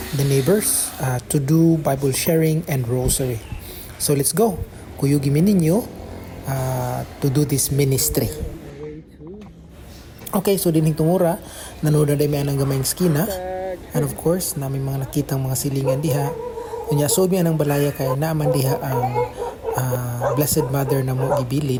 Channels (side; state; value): both; identical; correlation 1.00